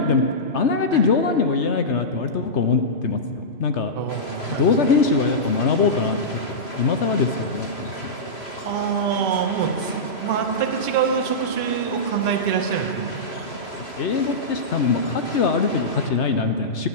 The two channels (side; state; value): right; late; 3.0 ms